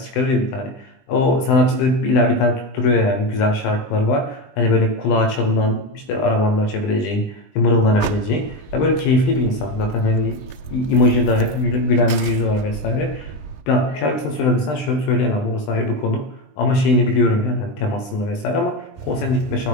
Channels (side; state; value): right; late; 20 ms